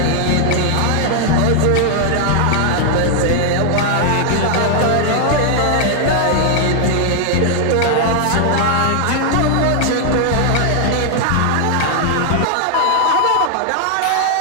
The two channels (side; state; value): both; different; correlation 0.00